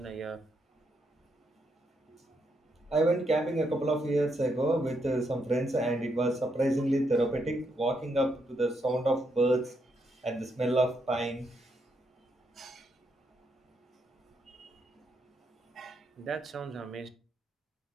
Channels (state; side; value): normal; both; correlation 0.78